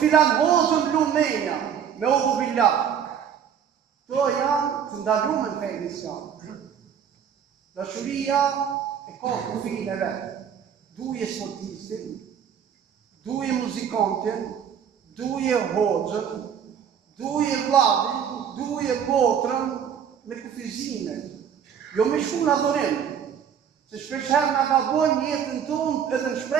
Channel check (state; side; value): quieter; left; 8.2 dB